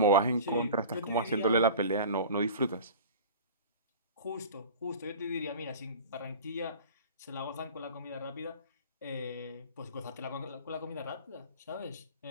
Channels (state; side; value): inverted; both; correlation -0.38